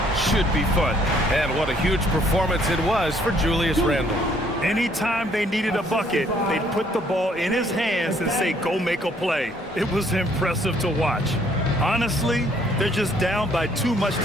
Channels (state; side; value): normal; both; correlation 0.64